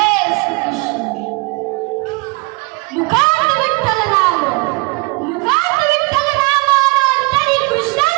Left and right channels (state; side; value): quieter; left; 27.4 dB